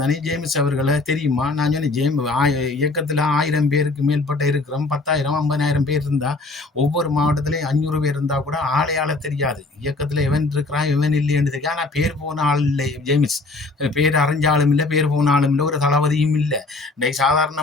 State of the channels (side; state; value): right; quieter; 3.3 dB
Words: தானே, ஜேம்ஸ் அவர்களை தெரியுமா? நான் சொன்னேன், இயக்கத்தில் 1000 பேருக்கு மேற்பட்ட இருக்கிறோம், 10,000 50,000 பேர் இருந்தால் ஒவ்வொரு மாவட்டத்திலையும் 500 பேர் இருந்தால் கூட ஆளை தெரியாது. இயக்கத்தில் எவன் இருக்கிறான் எவன் இல்லைன்னு தெரியும். ஆனால் பேர் போன ஆள் இல்லை ஜேம்ஸ், பேர் அறிஞ்சாலும் இல்லை, பேர் போன ஆளும் இல்லை, ஒரு தளபதியும் இல்லை. இன்றைக்கு